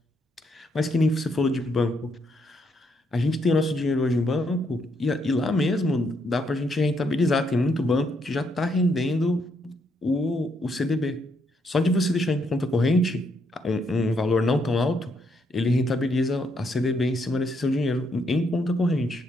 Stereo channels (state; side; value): normal; both; correlation 0.75